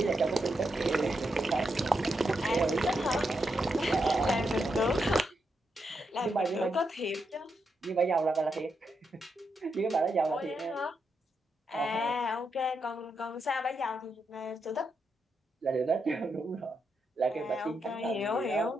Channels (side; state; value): both; normal; correlation 0.83